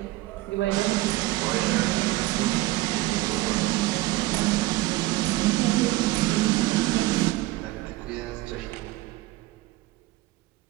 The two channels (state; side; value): quieter; left; 18.6 dB